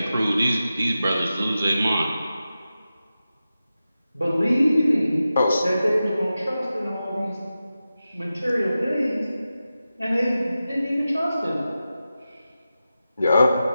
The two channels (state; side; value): inverted; both; correlation -0.92